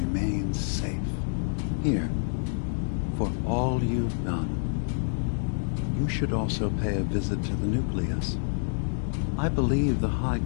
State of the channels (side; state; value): right; silent; digital silence